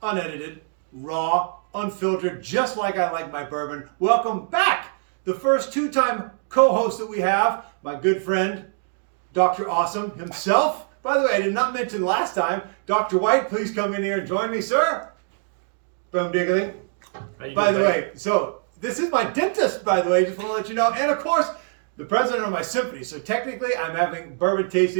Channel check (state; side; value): silent; left; digital silence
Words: unedited, raw, unfiltered, just like I like my bourbon. Welcome back. The first two-time co-host that we have, my good friend, Dr. Awesome himself. By the way, I did not mention last time, Dr. White, please come in here and join me, sir. Boom diggly. By the way, so this is my dentist, by the way, just want to let you know. And of course, the president of my symphony. So technically, I'm having bourbon